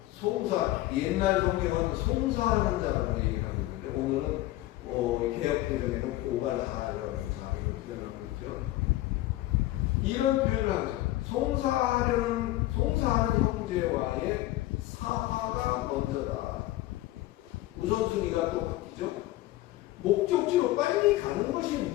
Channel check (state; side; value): quieter; right; 16.6 dB